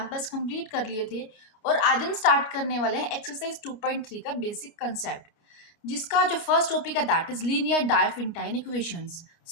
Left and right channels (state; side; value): late; right; 29 ms